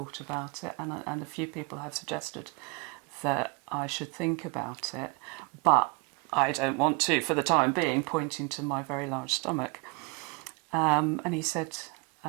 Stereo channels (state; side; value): quieter; left; 29.6 dB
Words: about it. And a few people have suggested that I should think about it. But I don't want to, for the time being, pointing to my very large stomach. And he said,